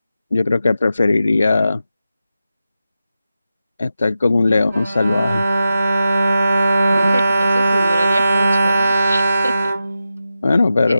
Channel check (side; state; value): both; inverted; correlation -0.91